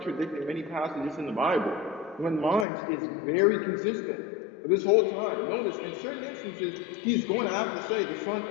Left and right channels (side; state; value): right; drops out; at 2.7 s